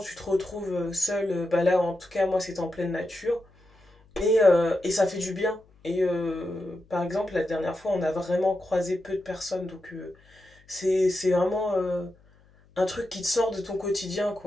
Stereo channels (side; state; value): left; noise; hum, 30 dB below the sound